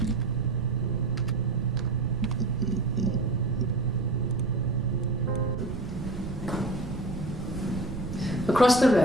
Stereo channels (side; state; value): right; noise; rumble, 7 dB below the sound